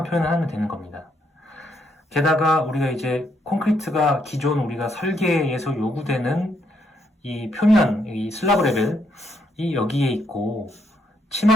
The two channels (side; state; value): both; normal; correlation 0.74